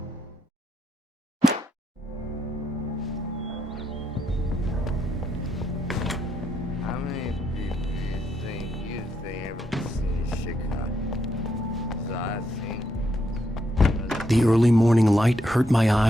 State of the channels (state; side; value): normal; both; correlation 0.79